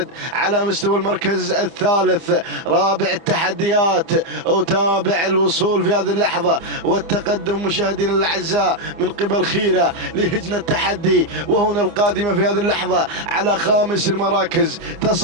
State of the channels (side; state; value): left; late; 30 ms